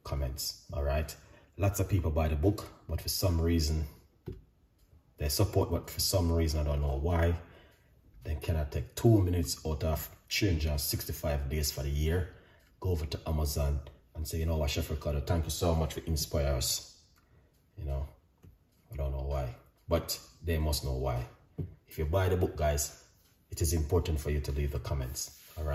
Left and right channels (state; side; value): identical; both; correlation 1.00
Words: comments. All right, lots of people buy the book, but for some reason they support, but for some reason I don't know why, they cannot take 2 minutes out of 365 days for the year, go over to Amazon and say, you know what, Chef Ricardo, thank you so much for inspiring us. You know, I don't know why, but they must know why. If you buy the book, guys, it is important for you to leave the comments. All